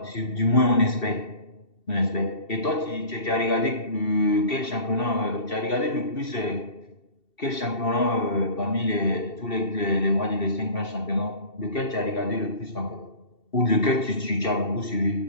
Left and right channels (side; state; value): right; late; 2.7 ms